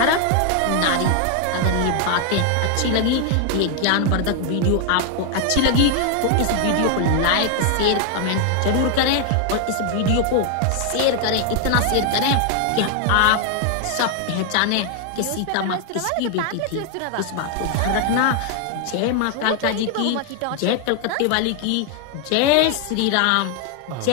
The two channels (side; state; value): both; different; correlation 0.00